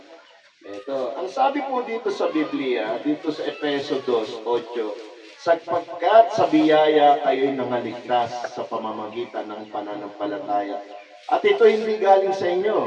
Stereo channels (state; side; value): identical; both; correlation 1.00